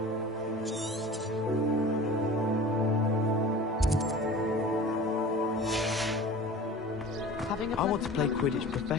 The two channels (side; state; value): both; normal; correlation 0.40